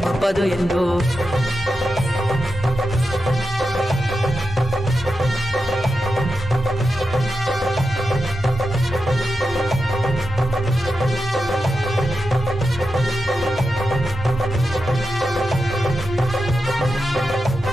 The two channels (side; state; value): both; normal; correlation 0.89